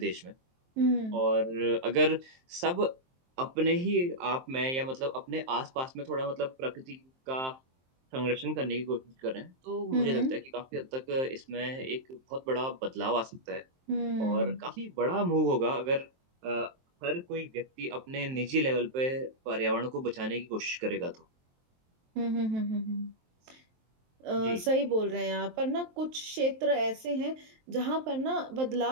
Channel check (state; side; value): late; left; 23 ms